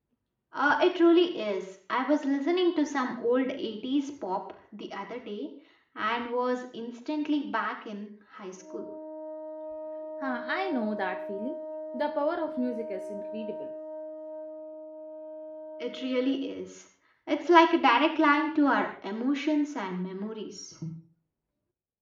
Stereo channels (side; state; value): both; identical; correlation 1.00